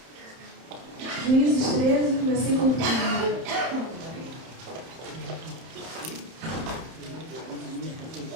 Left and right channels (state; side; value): late; left; 30 ms